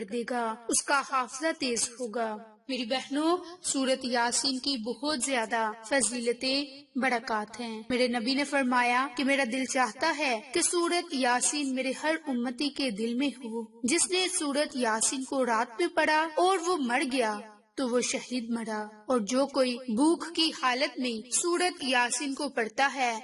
دے گا، اس کا حافظہ تیز ہوگا۔ میری بہنوں، سورت یاسین کی بہت زیادہ فضیلتیں، برکات ہیں۔ میرے نبی نے فرمایا کہ میرا دل چاہتا ہے کہ سورت یاسین میرے ہر امتی کے دل میں ہو۔ جس نے سورت یاسین کو رات میں پڑھا اور وہ مر گیا تو وہ شہید مرا، اور جو کوئی بھوک کی حالت میں سورت یاسین کو پڑھتا ہے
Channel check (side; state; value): both; identical; correlation 1.00